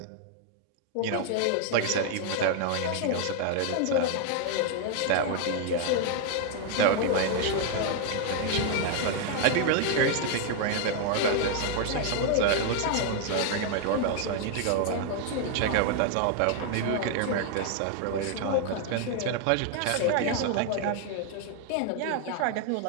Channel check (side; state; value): both; different; correlation 0.00